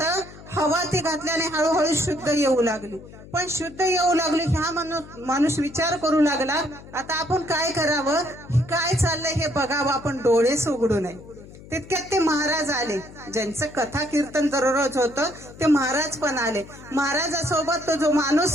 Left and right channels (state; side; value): noise; left; hum, 18 dB below the sound